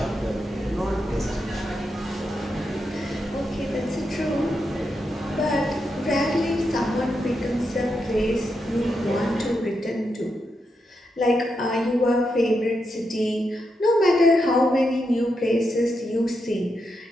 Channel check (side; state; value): both; normal; correlation 0.85